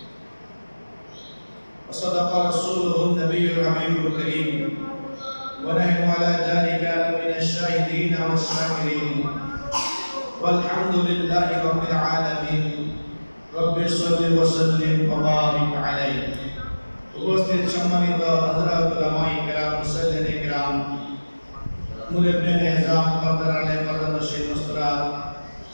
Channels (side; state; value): both; inverted; correlation -1.00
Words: وصدق رسوله النبي الحبيب الكريم ونحن على ذلك من الشاهدين والشاكرين والحمد لله رب العالمين رب صل وسلم وبارك عليه উপস্থিত সম্মানিত হযরত উলামায়ে কেরাম মুসল্লিনে কেরাম মুরব্বিয়ান নিজাম কদরানে কদরশী মুসরাত